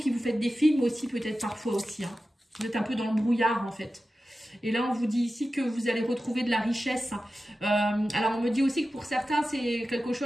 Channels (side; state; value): both; normal; correlation 0.93